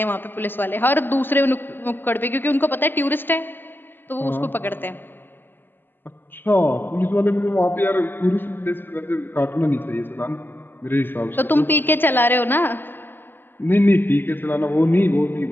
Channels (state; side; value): late; right; 0.096 ms